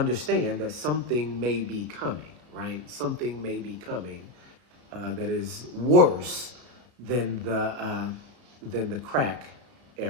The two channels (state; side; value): late; left; 33 ms